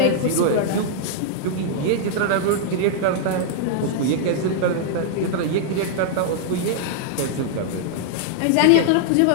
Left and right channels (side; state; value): both; different; correlation -0.01